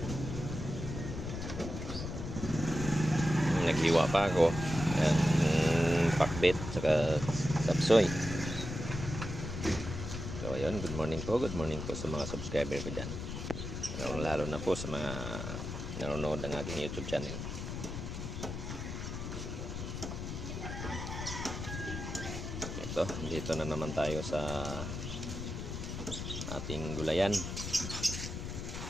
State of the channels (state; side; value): noise; left; rumble, 6 dB below the sound